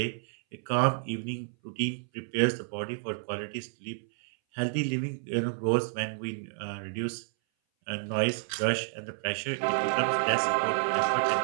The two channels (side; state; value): left; silent; 58 dB below the other